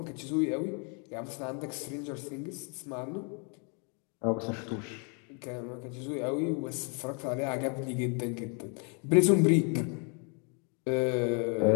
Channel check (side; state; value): right; quieter; 37.1 dB